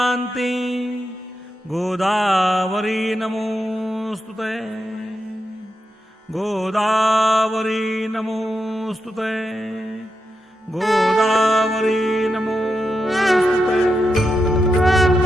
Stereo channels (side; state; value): both; normal; correlation 0.86